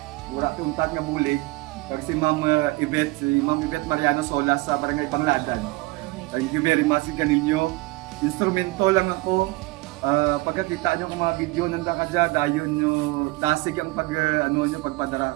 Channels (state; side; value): quieter; left; 22.5 dB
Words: mura tuntat nga bulig. Pag si Ma'am Yvette Mariano Solas sa Barangay Bangladan. Thank you very much kaninyo. Instrumento lang ako. Pagkakita nyo kung mga video nanda ka dyan, dayon nyo, dasig ang